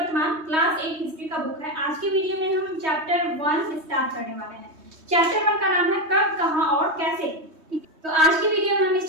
क्लास 8 हिस्ट्री का बुक है। आज के वीडियो में हम चैप्टर 1 स्टार्ट करने वाले हैं। चैप्टर 1 का नाम है कब, कहां और कैसे। तो आज की वीडियो में हम इस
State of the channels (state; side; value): late; left; 3.2 ms